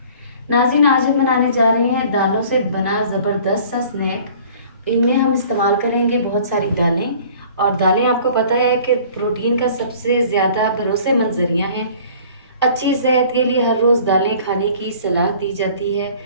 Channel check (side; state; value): both; inverted; correlation -0.50